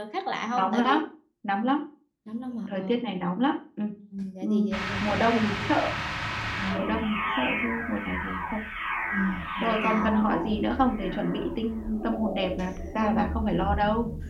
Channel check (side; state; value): both; identical; correlation 1.00